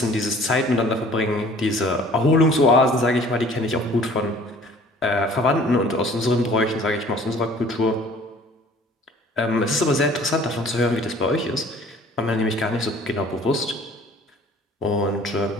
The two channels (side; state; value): both; normal; correlation 0.52